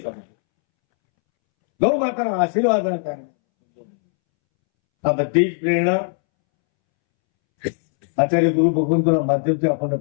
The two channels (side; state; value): right; silent; 66 dB below the other